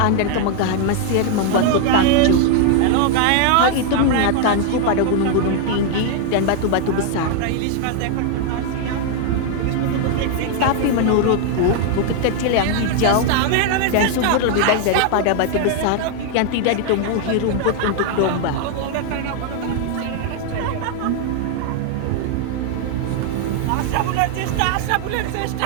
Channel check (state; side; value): different; both; correlation 0.00